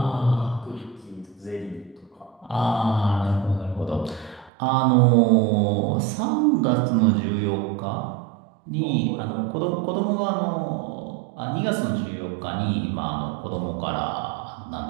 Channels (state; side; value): drops out; left; at 4.5 s